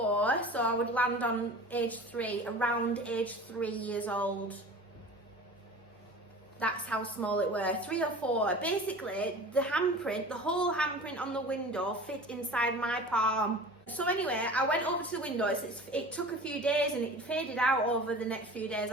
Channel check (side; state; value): both; normal; correlation 0.38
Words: so I would land on age 3, around age 3 years old. That's how small it were, 3 or 4. Basically, the handprint, the whole handprint on the window fit inside my palm. So anyway, I went over to the window. It took a few days and it faded out over the next few days